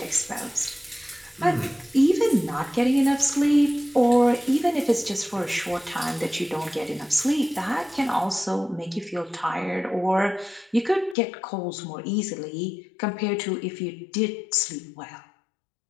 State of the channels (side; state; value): right; drops out; at 11.2 s